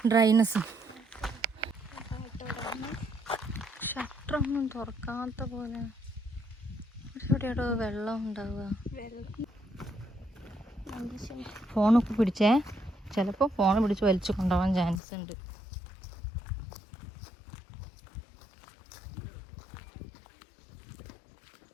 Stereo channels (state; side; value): drops out; right; at 15.0 s